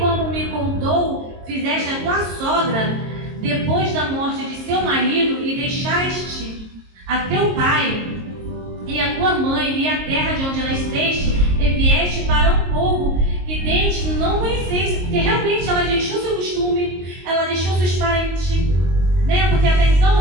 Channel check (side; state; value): left; late; 22 ms